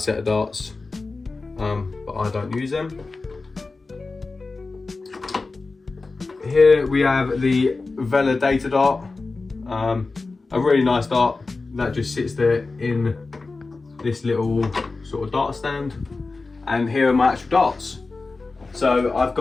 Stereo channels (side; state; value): right; quieter; 3.7 dB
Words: of darts, but I don't use them. Here we have the Vela Data dart, a really nice dart that just sits there in this little sort of dart stand. And here are my actual darts. So I've